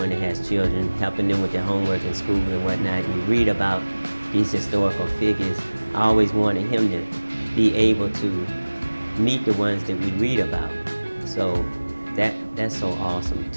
that has children, helping them with their homework in school and whatnot, and you read about these historical figures, I always wanted him to be able to meet the ones that we read about. So that's so awesome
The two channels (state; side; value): inverted; both; correlation -1.00